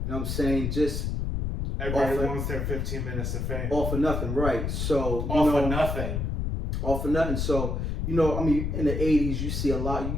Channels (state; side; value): noise; left; rumble, 1 dB below the sound